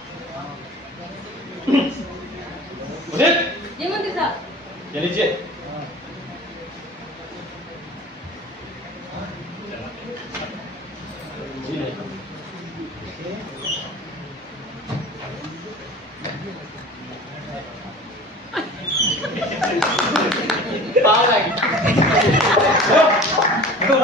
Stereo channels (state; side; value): normal; both; correlation 0.40